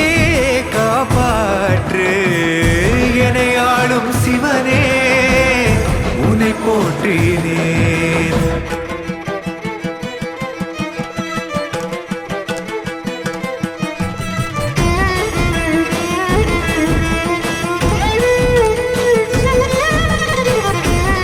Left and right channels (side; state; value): both; identical; correlation 1.00